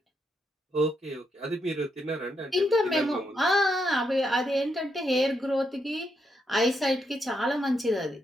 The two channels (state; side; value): normal; both; correlation 0.80